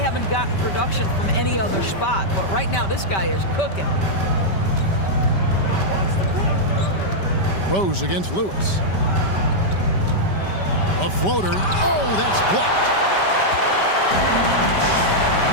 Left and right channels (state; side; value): late; right; 5.2 ms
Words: gotten production from any other spot, but right now this guy is cooking. Rose against Lewis. A floater. Oh, that's blocked.